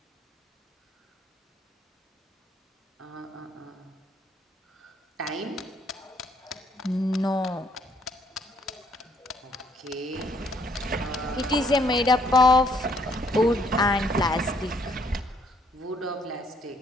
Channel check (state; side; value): normal; both; correlation 0.67